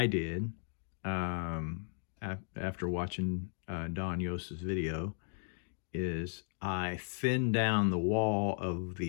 did after watching Donn Yost's video is I thinned down the wall of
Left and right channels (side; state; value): right; silent; 54 dB below the other